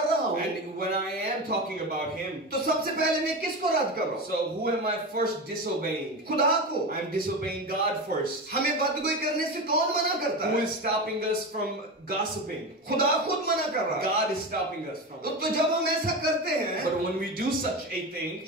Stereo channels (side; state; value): both; normal; correlation 0.22